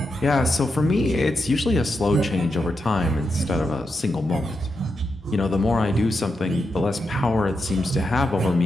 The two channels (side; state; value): both; normal; correlation 0.86